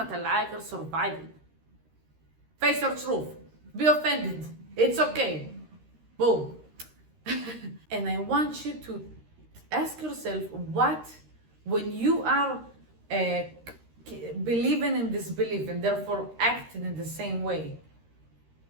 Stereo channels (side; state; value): left; late; 13 ms